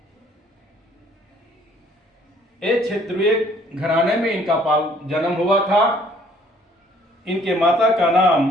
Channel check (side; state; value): both; normal; correlation 0.60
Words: एक क्षत्रिय घराने में इनका जन्म हुआ था। इनके माता का नाम